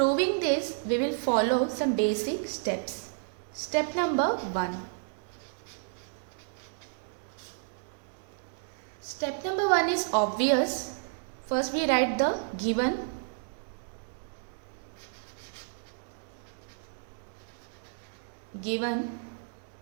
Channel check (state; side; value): silent; left; digital silence